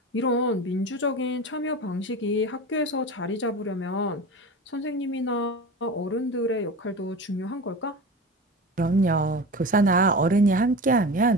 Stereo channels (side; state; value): both; normal; correlation 0.30